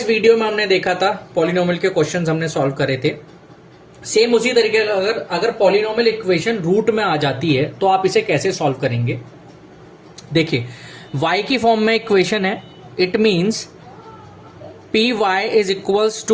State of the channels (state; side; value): identical; both; correlation 1.00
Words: video में हमने देखा था पॉलिनोमियल के क्वेश्चंस हमने सॉल्व करे थे। सेम उसी तरीके अगर पॉलिनोमियल इक्वेशन रूट में आ जाती है तो आप इसे कैसे सॉल्व करेंगे। देखिए y की फॉर्म में इक्वेशन है, it means p y is equals